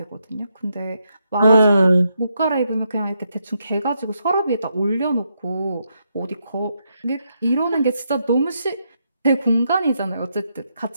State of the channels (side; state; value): both; inverted; correlation -0.80